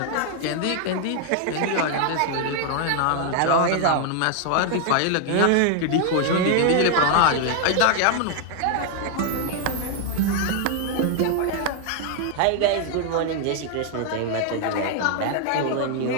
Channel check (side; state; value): both; different; correlation 0.00